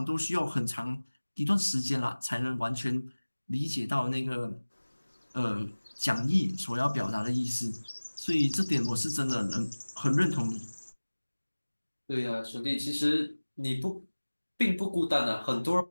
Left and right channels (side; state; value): both; inverted; correlation -1.00